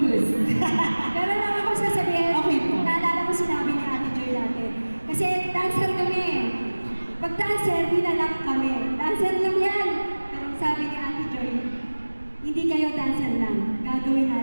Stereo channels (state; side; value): inverted; both; correlation -1.00